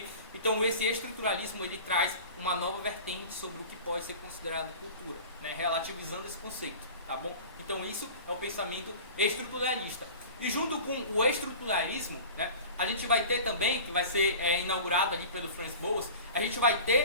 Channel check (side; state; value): both; inverted; correlation -0.38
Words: Então esse estruturalismo ele traz uma nova vertente sobre o que pode ser considerado cultura, né? Relativizando esse conceito, tá bom? Então isso é o pensamento estruturalista. E junto com o estruturalismo, né, a gente vai ter também, que vai ser inaugurado ali pelo Franz Boas, a gente vai